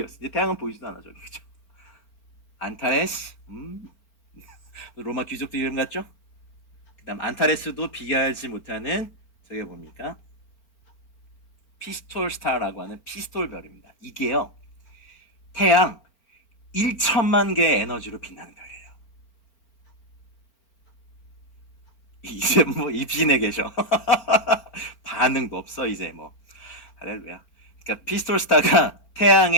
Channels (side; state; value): right; late; 4.4 ms